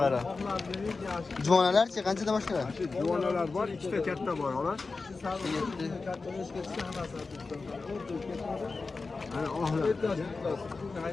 Juvonalarchi qanchadan boshlanadi? Juvonalar bor, ikkita katta bor, xolos. Ana ohlar.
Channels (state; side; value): quieter; right; 4.0 dB